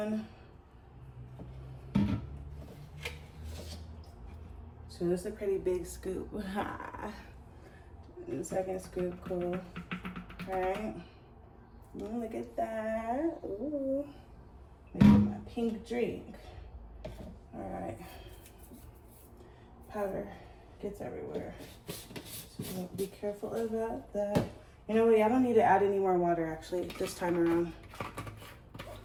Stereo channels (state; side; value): identical; both; correlation 1.00